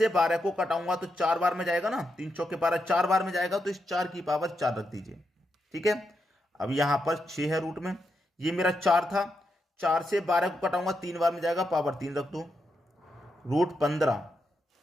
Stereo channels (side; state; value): both; normal; correlation 0.84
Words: 12 को कटाऊंगा तो 4 बार में जाएगा ना, 3 चौके 12, 4 बार में जाएगा, तो इस 4 की पावर 4 रख दीजिए। ठीक है, अब यहां पर 6 है रूट में, ये मेरा 4 था, 4 से 12 को कटाऊंगा, 3 बार में जाएगा, पावर 3 रख दो, √15।